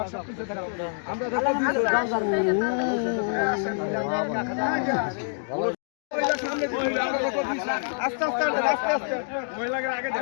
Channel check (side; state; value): right; silent; digital silence